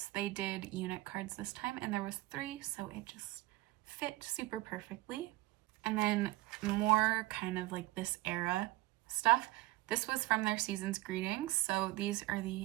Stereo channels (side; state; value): left; quieter; 18.8 dB